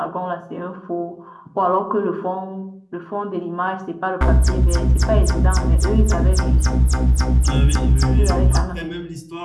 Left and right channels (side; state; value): both; identical; correlation 1.00